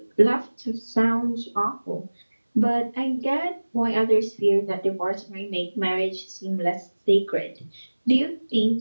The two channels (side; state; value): both; inverted; correlation -1.00